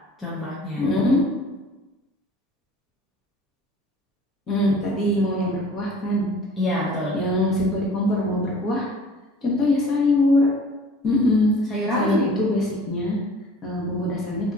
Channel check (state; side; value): normal; both; correlation 0.48